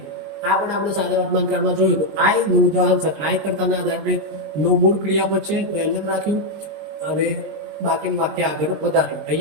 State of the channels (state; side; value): late; left; 20 ms